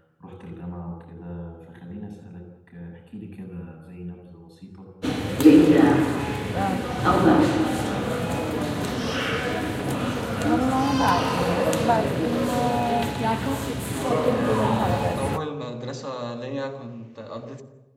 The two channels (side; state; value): both; identical; correlation 1.00